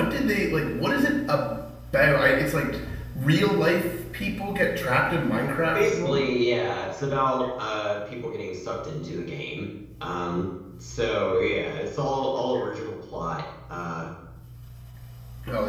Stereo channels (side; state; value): both; identical; correlation 1.00